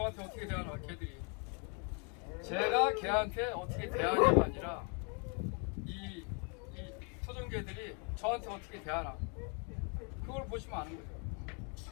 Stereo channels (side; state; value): right; quieter; 36.8 dB